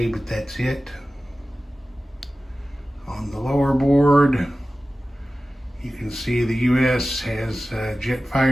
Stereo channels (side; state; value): both; normal; correlation 0.96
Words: but that's it. On the lower board, you can see the US has jet